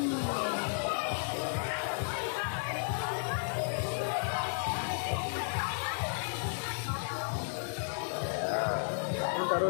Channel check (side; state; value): right; silent; 56 dB below the other